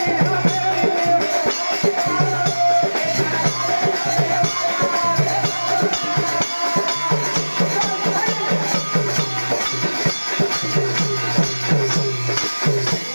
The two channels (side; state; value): both; inverted; correlation -1.00